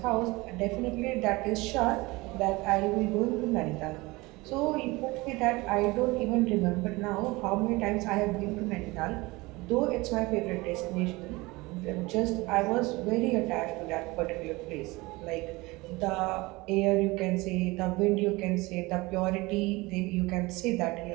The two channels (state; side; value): quieter; left; 22.5 dB